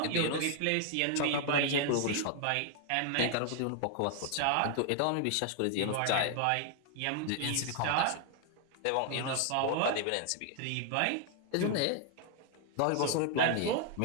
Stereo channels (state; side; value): different; both; correlation 0.00